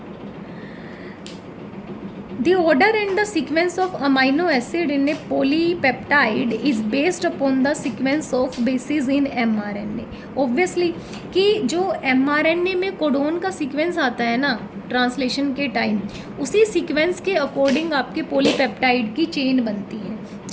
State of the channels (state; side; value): identical; both; correlation 1.00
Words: The order and the sequence of amino acid in a polypeptide is based upon the sequence of bases in mRNA. Obviously कि जो mRNA में कोडोन का सीक्वेंस आता है ना ट्रांसलेशन के टाइम, उसी सीक्वेंस के अकॉर्डिंग आपके पॉलीपेप्टाइड की चेन बनती है,